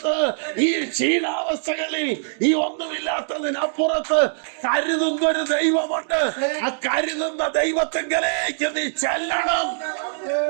ഈ ക്ഷീണാവസ്ഥകളിൽ, ഈ ഒന്നുമില്ലാത്തതിനപ്പുറത്ത് കരുതുന്ന ഒരു ദൈവമുണ്ട്. ആ കരുതുന്ന ദൈവത്തിങ്കലേക്ക് നീ ചെല്ലണം.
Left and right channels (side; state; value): left; silent; digital silence